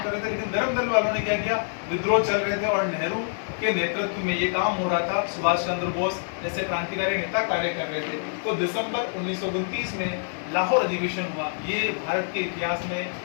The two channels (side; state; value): right; silent; digital silence